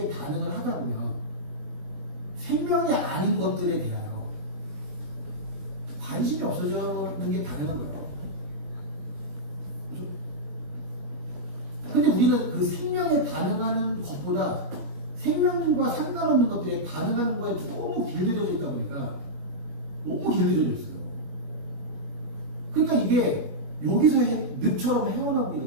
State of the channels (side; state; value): left; late; 21 ms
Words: 반응을 하다 보면 생명이 아닌 것들에 대하여 관심이 없어지는 게 당연한 거예요. 그죠? 근데 우리는 그 생명에 반응하는 것보다 생명과 상관없는 것들에 반응하는 거에 너무 길들여져 있다 보니까 너무 길들여져 있어요. 그러니까 이게 여기서 늪처럼 헤어나오기가